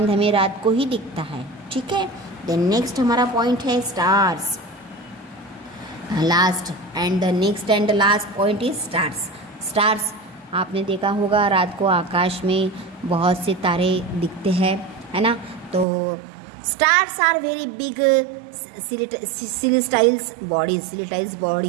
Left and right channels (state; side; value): drops out; left; at 15.9 s